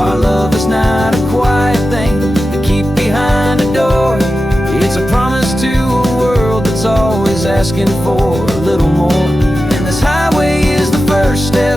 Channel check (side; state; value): both; normal; correlation 0.92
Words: love is not a quiet thing to keep behind a door. It's a promise to a world that's always asking for a little more. And this highway is the first